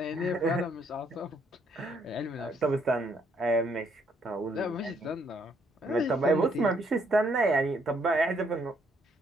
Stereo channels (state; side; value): normal; both; correlation 0.70